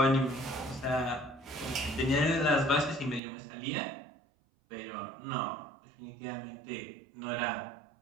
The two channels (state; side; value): drops out; left; at 3.2 s